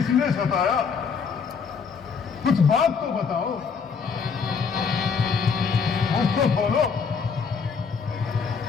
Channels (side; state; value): right; quieter; 5.8 dB